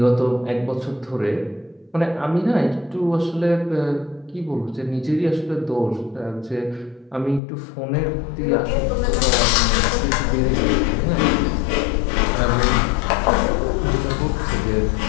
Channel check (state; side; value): drops out; right; at 7.4 s